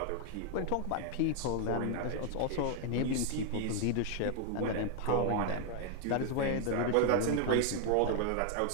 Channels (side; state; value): both; different; correlation 0.00